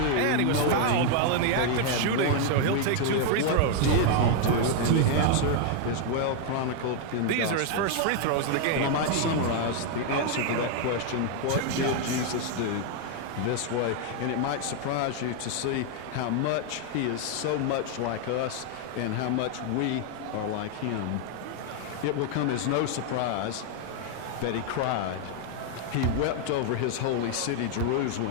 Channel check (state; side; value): different; both; correlation 0.00